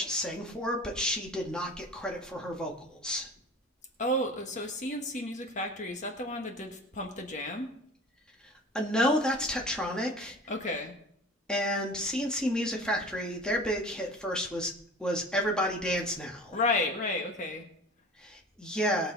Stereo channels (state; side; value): normal; both; correlation 0.39